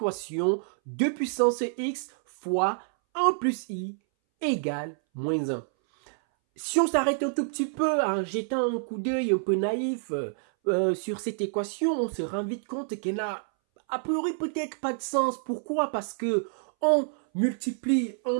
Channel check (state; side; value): silent; left; 59 dB below the other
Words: 2 puissance x fois 1 plus i égale moins 1. Si on s'arrête un tout petit peu en jetant un coup d'œil un peu naïf sur cette équation, on se rend vite compte qu'elle n'a a priori peut-être pas de sens. Pourquoi? Parce que on multiplie un